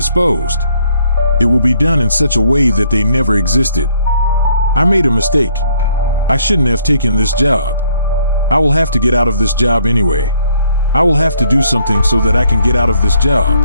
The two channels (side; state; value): both; inverted; correlation -0.66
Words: It will be done in such a way that they never existed. I made a mistake. I shouldn't have taken this job. I will have to get out of this job anyway. I will have to do something so that I can get out of this job.